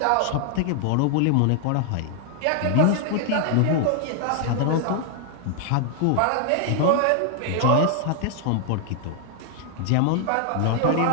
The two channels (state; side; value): different; both; correlation 0.00